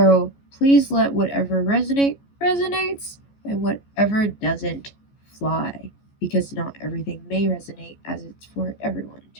please let whatever resonates, and whatever doesn't fly, because not everything may resonate as it's for everyone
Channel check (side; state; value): right; late; 14 ms